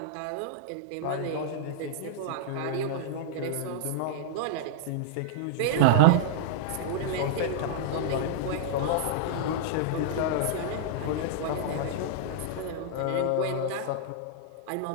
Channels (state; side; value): different; both; correlation -0.02